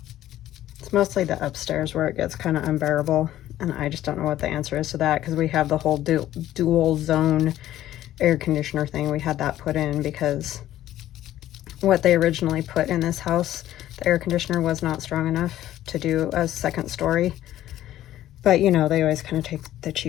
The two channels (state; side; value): quieter; right; 13.3 dB